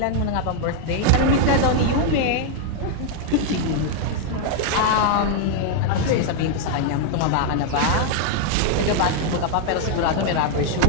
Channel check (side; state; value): both; different; correlation 0.00